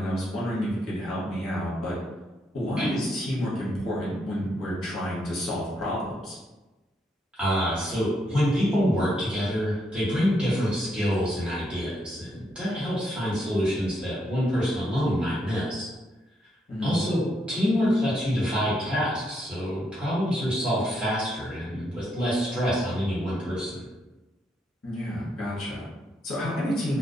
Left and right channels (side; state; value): both; normal; correlation 0.77